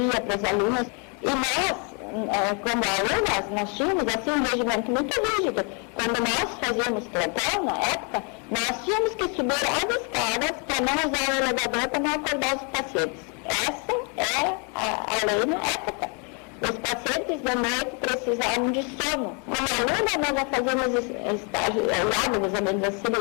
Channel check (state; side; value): quieter; right; 36.2 dB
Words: para as alunas, e nós, como alunas, nós tínhamos assim um regimento muito rígido. Quando nós fazíamos plantão, na época, nós tínhamos que subir as escadas para não usar o elevador, para não acordar os pacientes. Essa é a lei na época. Os pacientes de noite precisavam de sono. Como aluna, nós já fazíamos estágio, olhávamos as